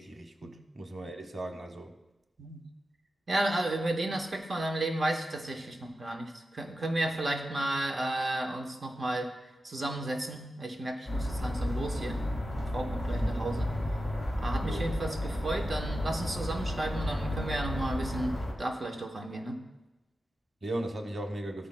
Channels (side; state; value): both; normal; correlation 0.91